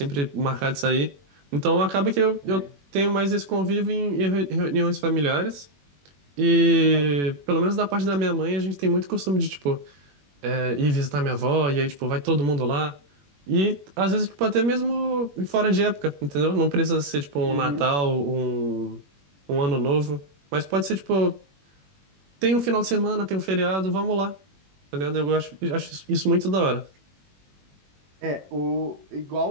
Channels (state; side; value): late; left; 21 ms